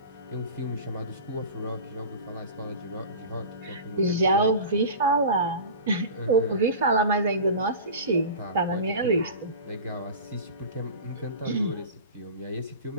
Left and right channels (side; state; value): both; inverted; correlation -0.34